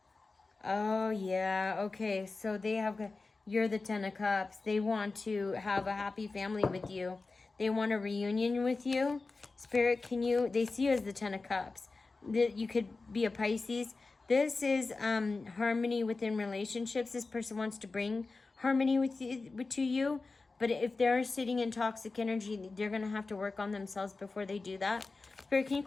Oh, yeah. Okay. So they have, you're the 10 of Cups. They want to have a happy family with you. They want a reunion with you. Spirit, can you, they see you as the 10 of Cups. You could be a Pisces. This is harmony within relationships. This person wants to bring harmony to you. But if they're sitting in toxic energy, they're going to have to work on themselves before they do that. Spirit, can you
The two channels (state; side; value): quieter; right; 3.8 dB